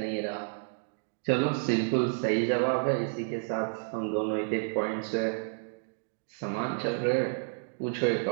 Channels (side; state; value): left; silent; digital silence